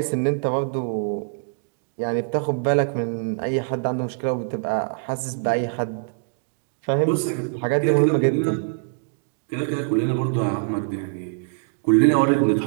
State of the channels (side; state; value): left; silent; digital silence